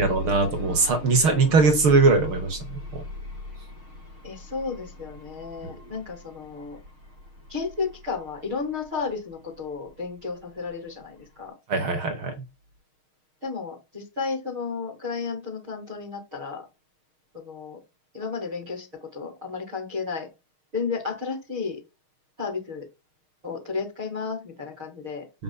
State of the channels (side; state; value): left; late; 6.5 ms